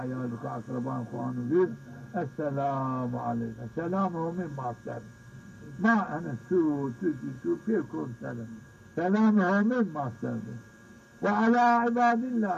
خو اقربان خو انوير السلام عليكم سلام هم ما سلام ما انا سو فيكم سلام سلام هم ما سلام وعلى عباد الله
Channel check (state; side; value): identical; both; correlation 1.00